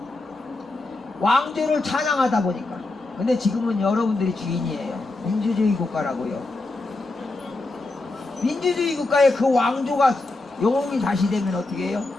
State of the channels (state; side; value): quieter; right; 3.1 dB